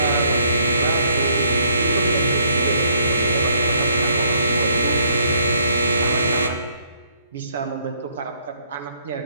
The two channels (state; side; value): inverted; both; correlation -0.67